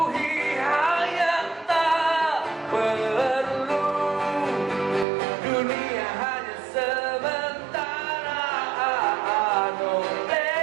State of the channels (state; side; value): drops out; left; at 5.1 s